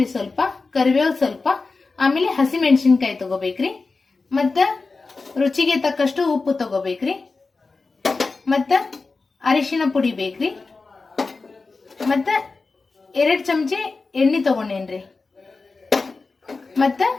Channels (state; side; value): quieter; right; 4.0 dB